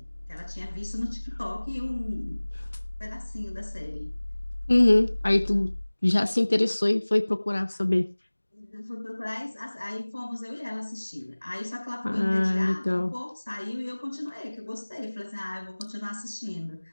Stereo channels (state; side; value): inverted; both; correlation -1.00